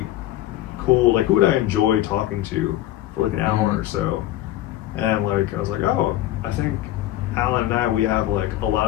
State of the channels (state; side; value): quieter; right; 14.3 dB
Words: cool, who would I enjoy talking to for an hour or so, and I was like, I think Alan and I, we have a lot